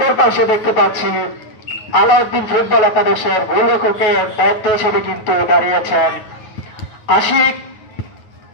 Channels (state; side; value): late; right; 9.3 ms